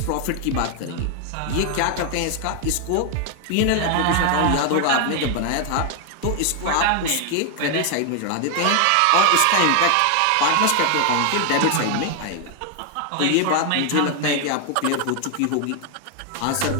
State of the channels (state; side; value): different; both; correlation 0.00